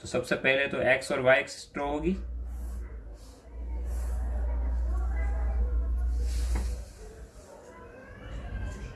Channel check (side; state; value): both; identical; correlation 1.00